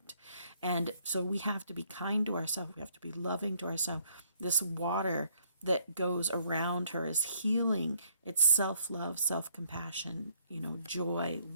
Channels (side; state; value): both; inverted; correlation -0.66